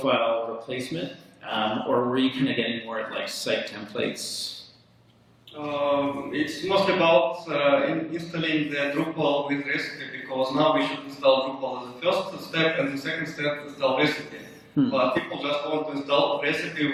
replacement, or were you kind of getting more at like site templates? It's mostly about installing the Drupal with recipe, because now we should install Drupal as the first step, and the second step install recipe. But people just want to install recipe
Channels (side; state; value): both; identical; correlation 1.00